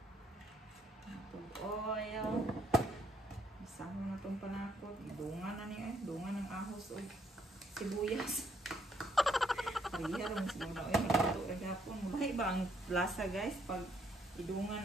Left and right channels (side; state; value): both; normal; correlation 0.70